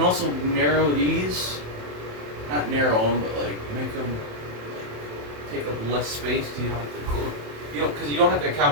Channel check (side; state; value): left; late; 27 ms